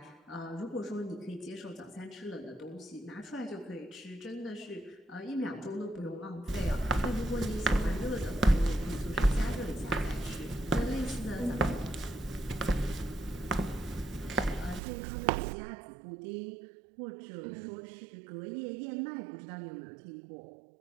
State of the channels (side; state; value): left; drops out; at 14.8 s